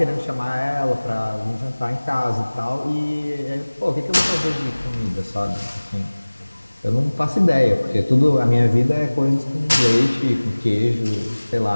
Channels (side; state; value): both; inverted; correlation -1.00